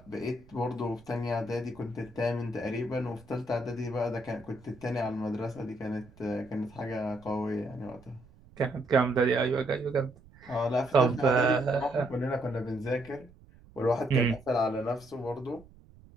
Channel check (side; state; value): right; noise; rumble, 24 dB below the sound